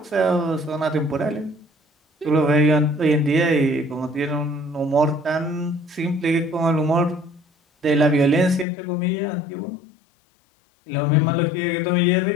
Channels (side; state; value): right; drops out; at 8.7 s